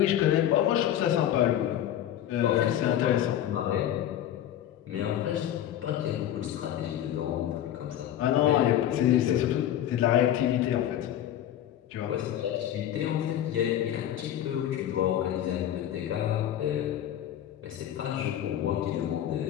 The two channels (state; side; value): quieter; right; 11.4 dB